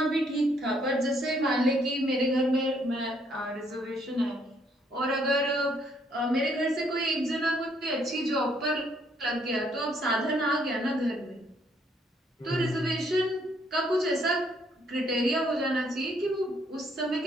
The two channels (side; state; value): both; normal; correlation 0.69